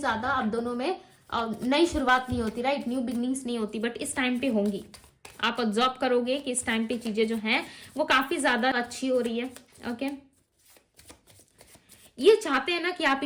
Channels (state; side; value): identical; both; correlation 1.00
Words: आप दोनों में नई शुरुआत नहीं होती, राइट, न्यू बिगनिंग्स नहीं होती, बट इस टाइम पे होंगी। आप ऑब्जर्व करोगे कि इस टाइम पे चीजें जो हैं वो काफी ज्यादा अच्छी हो रही है, ओके। ये चाहते हैं ना कि आप